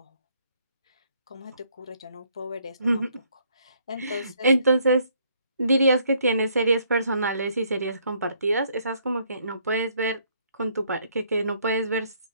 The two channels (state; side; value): inverted; both; correlation -0.67